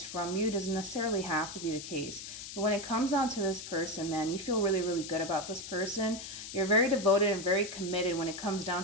from you. It doesn't necessarily have to be the case. But when it comes down to this person, man, you feel really, really good about this person. You're very devoted and very committed when it comes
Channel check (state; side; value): noise; left; hiss, 10 dB below the sound